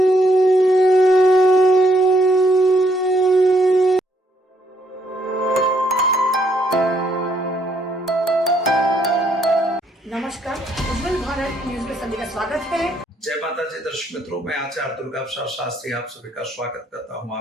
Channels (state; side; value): normal; both; correlation 0.71